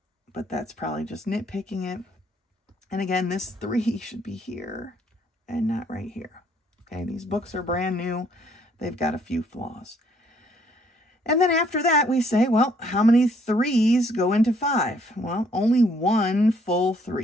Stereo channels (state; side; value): normal; both; correlation 0.65